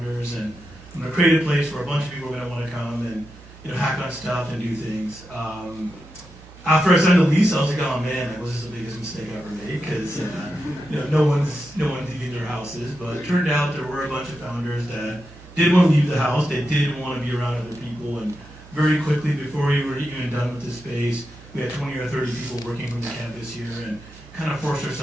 and I'm going to create a place where a bunch of people are going to want to come and hack on stuff and do things. After I signed the lease, I was like, oh man, that was just the biggest mistake I ever made, because no one's leaving their houses. But it turned out there were a bunch of founders that did want to leave the house. They did want to be around other people, and very quickly, before we were even done with the space, we had 20 or 30 people working from the campus here, and kind of forced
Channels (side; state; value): both; normal; correlation 0.88